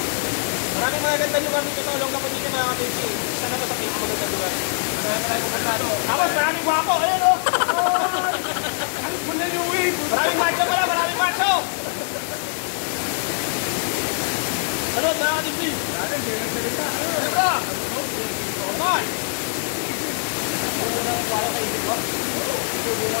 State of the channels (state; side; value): silent; right; 63 dB below the other